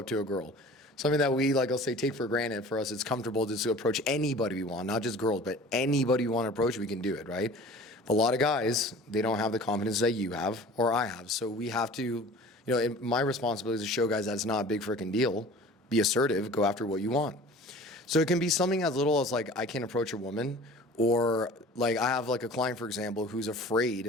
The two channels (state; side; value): normal; both; correlation 0.43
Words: to a girl. Something that we I'll say take for granted. For us, it's comfortable just to approach anybody we want, not just girls, but anybody we want to approach, we can do it, right? But a lot of guys, they don't have the confidence that you have or I have. So we have to, my responsibility is to show guys that it's not a big freaking deal. Be assertive, go after what you want. So it can be something as little as I can't approach a woman, or I have a client, for example, who's